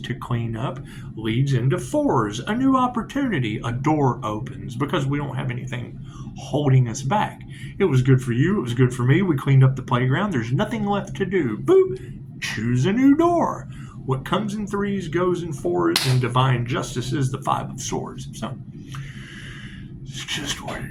to clean up leads into 4s. A new opportunity, a door opens because we don't have anything holding us back. It was good for you, it was good for me. We cleaned up the playground. There's nothing left to do. Boop! Choose a new door. What comes in 3s goes in 4s, and divine justice is the 5 of swords. So, it's just what it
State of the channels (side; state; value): both; identical; correlation 1.00